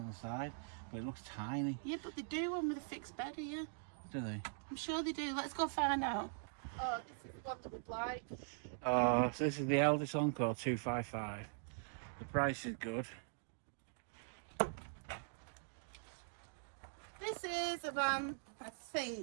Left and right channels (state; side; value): silent; left; digital silence